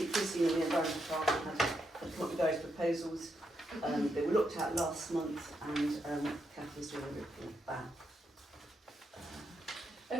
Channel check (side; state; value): both; normal; correlation 0.81